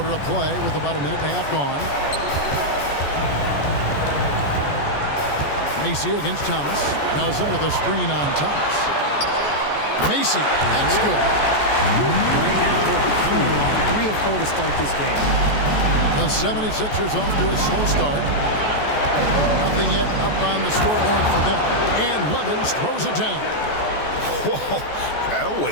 of play with about a minute and a half gone. Macy against Thomas. Nelson with a screen on Thomas. Macy, that's good. Right now they're coming along 3 or 4 to start this game. The 76ers off to a slow start. Nothing yet up on the scoreboard for them. And Levins throws it down. Whoa, that'll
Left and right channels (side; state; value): right; late; 14 ms